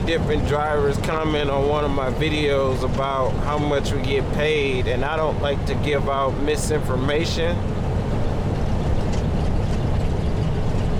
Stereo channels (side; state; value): both; identical; correlation 1.00